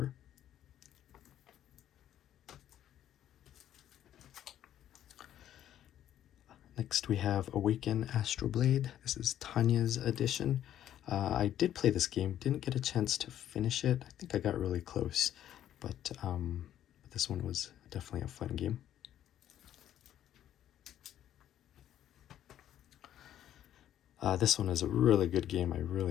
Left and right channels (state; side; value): quieter; right; 11.3 dB